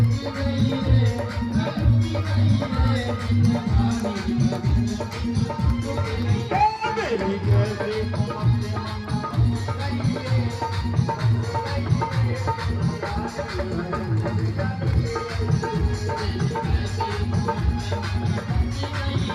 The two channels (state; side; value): identical; both; correlation 1.00